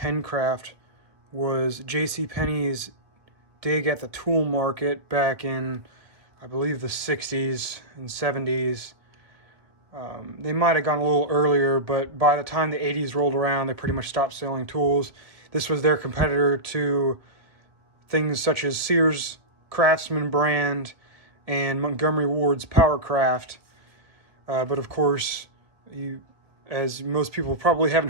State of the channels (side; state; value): left; late; 1.7 ms